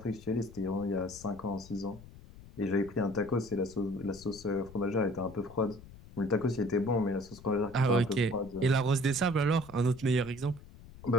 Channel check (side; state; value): left; noise; rumble, 19 dB below the sound